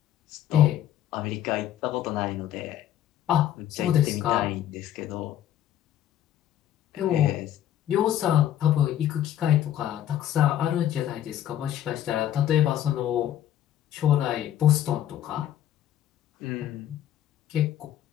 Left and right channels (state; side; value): quieter; right; 11.4 dB